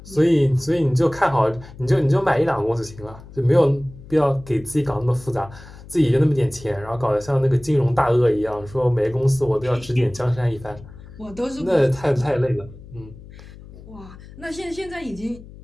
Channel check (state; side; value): noise; left; hum, 18 dB below the sound